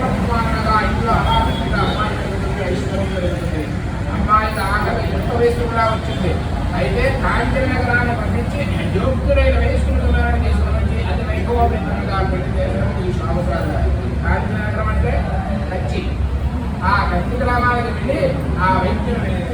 ఇంట్లో అమ్మాయి ఐశ్వర్యం జరుగుతుంది. అమ్మాయికి ఆకలి ఎంత వయసు కూడా వచ్చింది. అయితే కాంచన నగరాన్ని పంపించి యోగ్యులైన వయస్కులను తీసుకుని అది వైభవోపేతంగా పెళ్లి చేశారు ఈ షావుదారు గారు. కాంచన నగరం అంటే కచ్చి. ఆ కచ్చి గ్రామానికి వెళ్ళి ఆ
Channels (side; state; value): both; identical; correlation 1.00